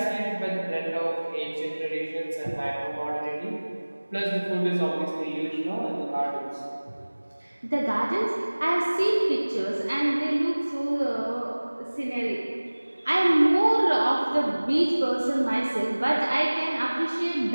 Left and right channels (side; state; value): both; inverted; correlation -1.00